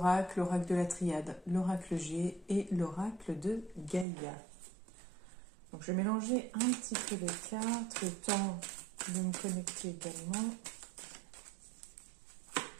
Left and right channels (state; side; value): drops out; left; at 4.0 s